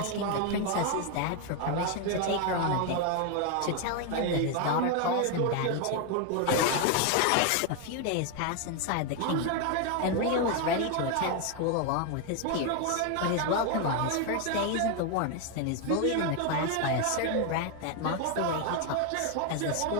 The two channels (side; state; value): both; different; correlation 0.01